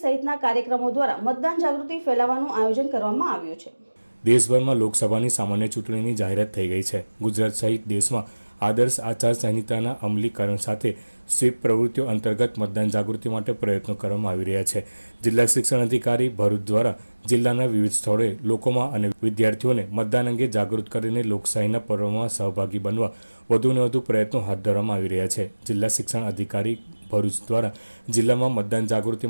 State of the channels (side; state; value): both; inverted; correlation -1.00